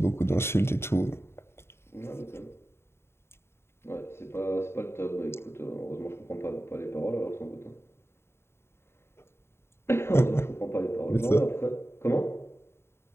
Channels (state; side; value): late; right; 0.12 ms